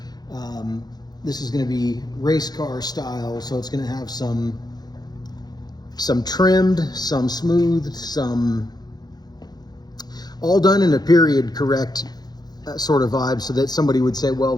This is going to be race car style, so it's going to have some trimmed, some smoothed, some all done in a period correct sort of vibe, so that somebody would say, well,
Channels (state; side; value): late; right; 0.19 ms